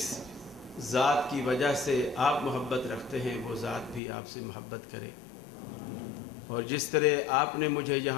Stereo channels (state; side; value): drops out; right; at 4.0 s